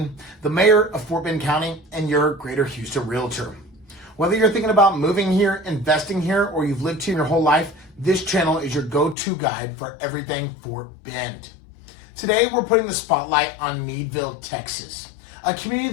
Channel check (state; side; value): drops out; right; at 9.2 s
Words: the mayor of Fort Bend County and your Greater Houston realtor. Whether you're thinking about moving here, investing here, or you've lived here your whole life, this channel is your go-to guide for everything Fort Bend. Today, we're putting the spotlight on Needville, Texas, a